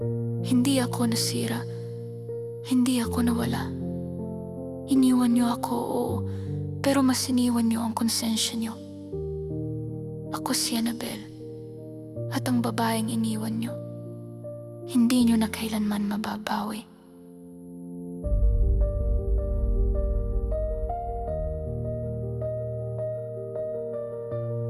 Hindi ako nasira. Hindi ako nawala. Iniwan niyo ako, oo. Pero mas iniwan niyo ang konsensya niyo. Ako si Annabelle. At ang babaeng iniwan niyo, hindi niyo na kailanman mababawi.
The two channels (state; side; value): identical; both; correlation 1.00